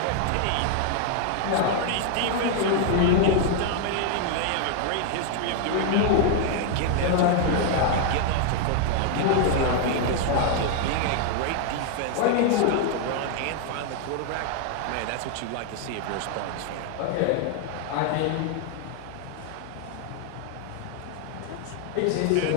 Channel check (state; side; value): different; both; correlation 0.00